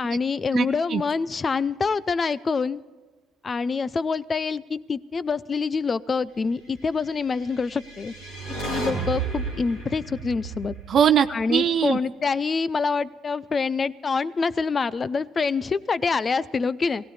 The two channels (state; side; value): normal; both; correlation 0.79